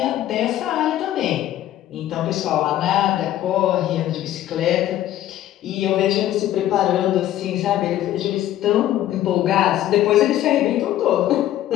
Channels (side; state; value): right; quieter; 13.0 dB